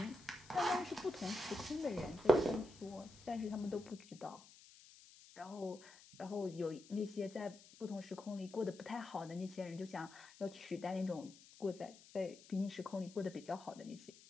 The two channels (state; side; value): noise; left; hiss, 20 dB below the sound